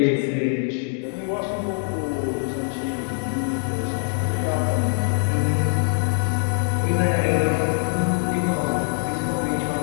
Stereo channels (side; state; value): right; silent; digital silence